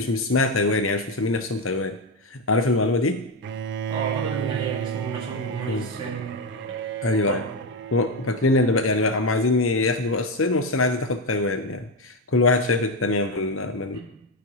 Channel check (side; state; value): both; normal; correlation 0.10